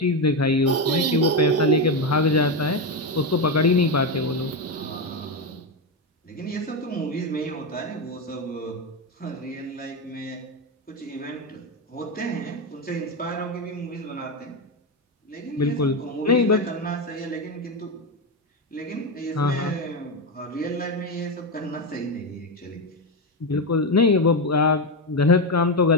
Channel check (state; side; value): normal; both; correlation 0.11